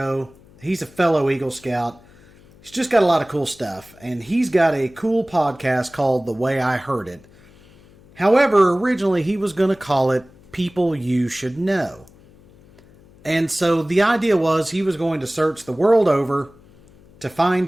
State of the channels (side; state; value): left; noise; hum, 26 dB below the sound